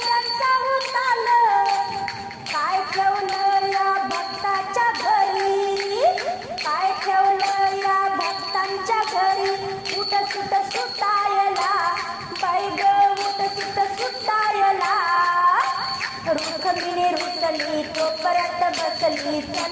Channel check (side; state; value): both; identical; correlation 1.00